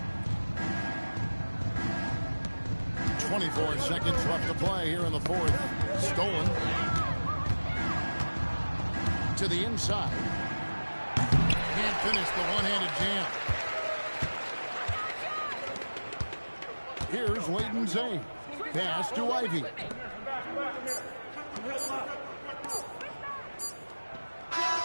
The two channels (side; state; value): both; inverted; correlation -1.00